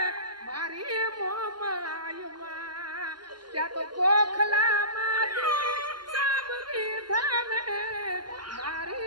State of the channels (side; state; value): left; late; 0.71 ms